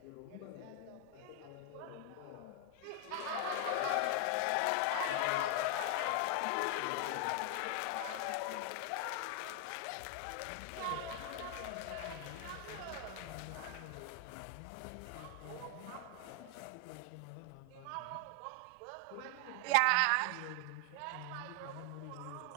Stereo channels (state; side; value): different; both; correlation 0.00